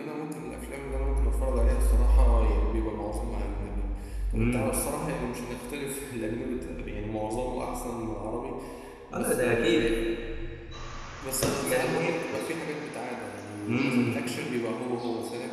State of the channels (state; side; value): identical; both; correlation 1.00